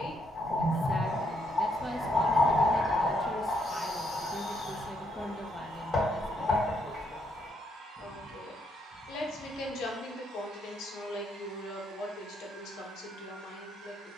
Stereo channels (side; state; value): both; normal; correlation 0.74